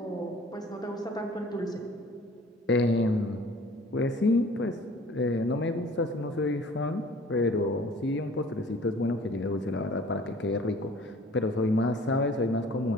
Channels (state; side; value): normal; both; correlation 0.50